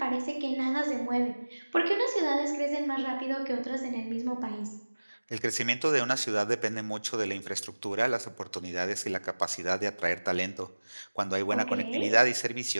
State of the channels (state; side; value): inverted; both; correlation -1.00